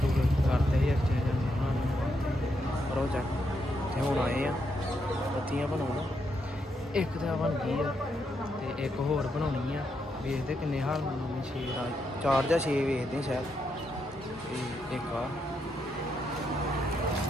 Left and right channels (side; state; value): both; normal; correlation 0.80